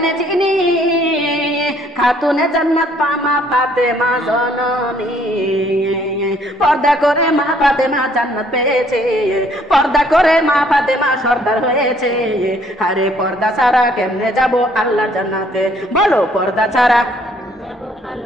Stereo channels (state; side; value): normal; both; correlation 0.63